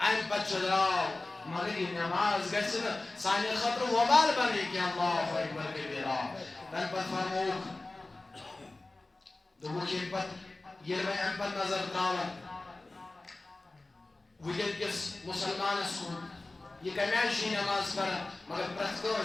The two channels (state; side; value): quieter; right; 3.0 dB